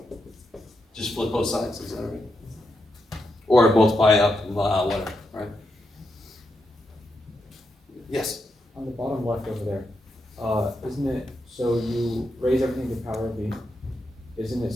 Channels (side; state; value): both; normal; correlation 0.84